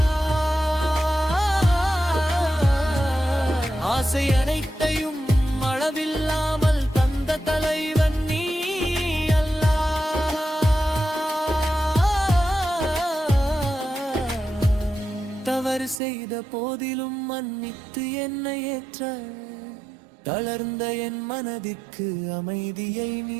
ஆசை அனைத்தையும் அளவில்லாமல் தந்த தலைவன் நீ செய்த போதிலும் மன்னித்து என்னை ஏற்ற, தளர்ந்த என் மனதிற்கு அமைதியை நீ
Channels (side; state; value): left; drops out; at 16.0 s